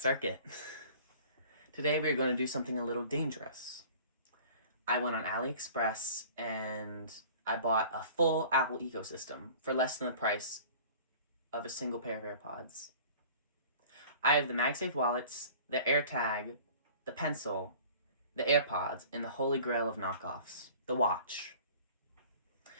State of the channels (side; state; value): both; inverted; correlation -0.46